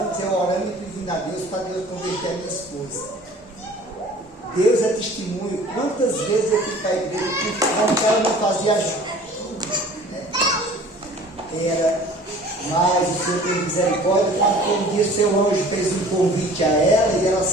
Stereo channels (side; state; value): both; normal; correlation 0.47